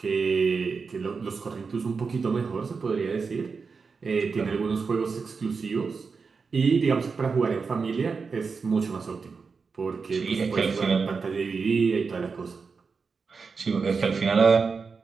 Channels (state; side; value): quieter; left; 5.0 dB